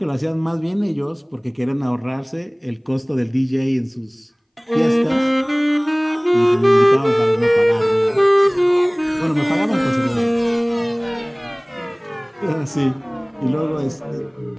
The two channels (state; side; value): identical; both; correlation 1.00